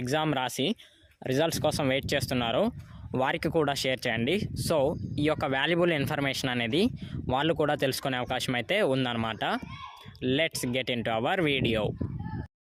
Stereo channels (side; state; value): both; identical; correlation 1.00